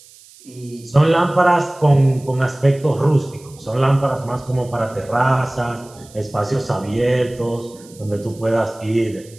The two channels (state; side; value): noise; right; hiss, 24 dB below the sound